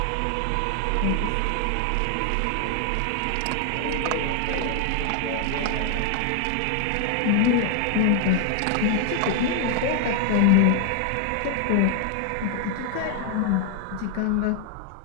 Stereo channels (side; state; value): both; different; correlation 0.00